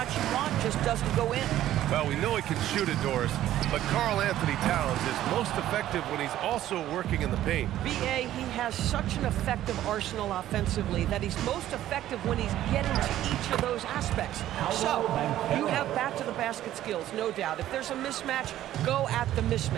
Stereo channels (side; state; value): left; quieter; 13.0 dB